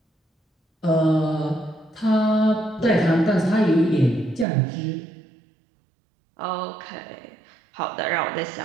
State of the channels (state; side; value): drops out; left; at 4.5 s